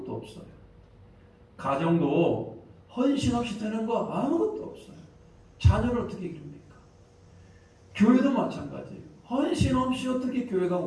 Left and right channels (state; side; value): identical; both; correlation 1.00